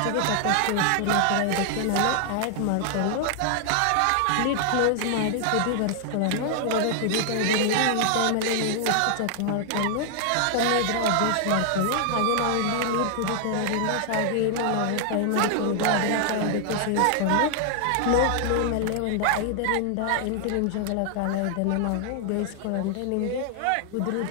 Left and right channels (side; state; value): both; different; correlation 0.00